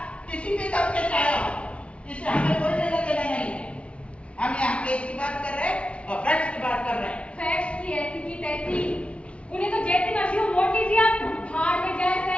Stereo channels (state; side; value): late; right; 0.061 ms